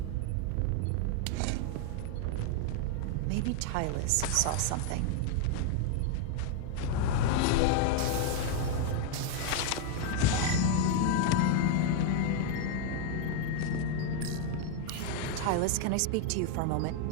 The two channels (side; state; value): both; different; correlation 0.00